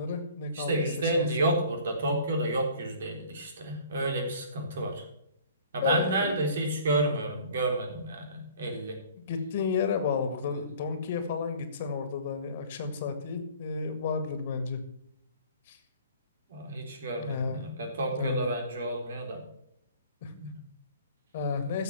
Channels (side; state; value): both; inverted; correlation -0.50